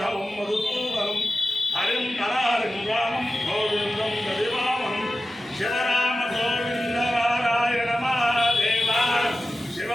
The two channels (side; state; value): both; normal; correlation 0.94